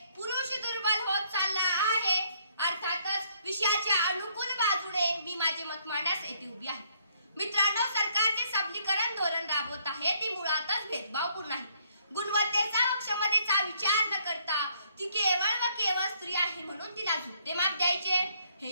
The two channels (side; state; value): both; inverted; correlation -0.68